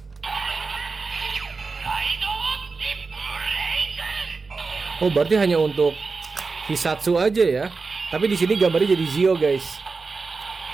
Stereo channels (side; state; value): left; quieter; 4.3 dB